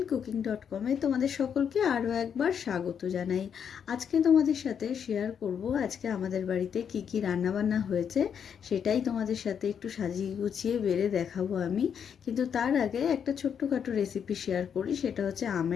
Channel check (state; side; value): quieter; right; 7.7 dB